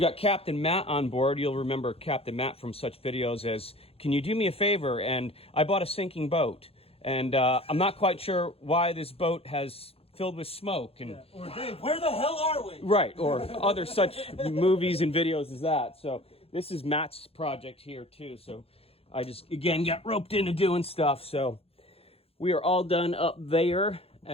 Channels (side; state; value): right; late; 0.28 ms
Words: got Captain Matt on board. You'll remember Captain Matt from such videos as, can you do me a favor? And I bought a sinking boat. And I'm not quite sure why this boat has filled with smoke. And Or Dave, where the hell are we? right, or other such movies and videos as that. So this is Matt's project here too. So I just, again, got roped into doing stuff. So we are all done up there.